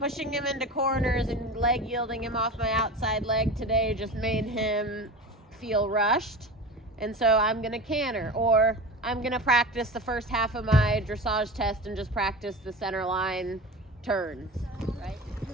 him into corners and leg yielding him off my outside leg today just made him feel rushed. And so I'm going to canter. Or I'm going to practice the first half of my dressage test and just practice the center line turns, right?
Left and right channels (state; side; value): normal; both; correlation 0.30